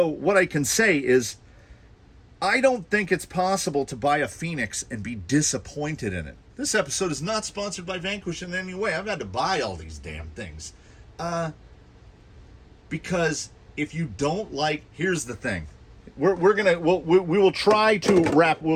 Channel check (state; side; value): identical; both; correlation 1.00